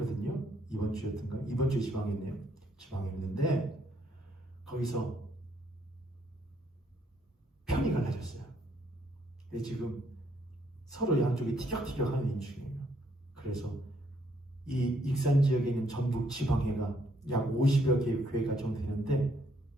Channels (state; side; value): normal; both; correlation 0.70